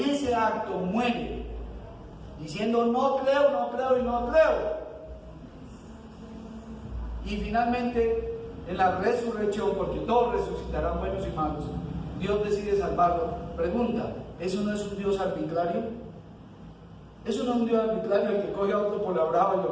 ese acto muere, diciendo no creo, no creo y no creo, y finalmente en la resurrección, porque todos resucitarán buenos y malos, Dios decide salvarlo. Pregunta, ¿eso no es un Dios arbitrario? ¿Eso no es un Dios arbitrario el que coge a otro por la brava y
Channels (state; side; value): identical; both; correlation 1.00